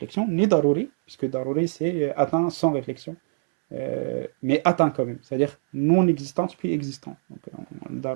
ni daruri, puisque daruri c'est atteint sans réflexion, mais atteint quand même, c'est-à-dire non-existence puis existant. Donc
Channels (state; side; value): silent; left; 62 dB below the other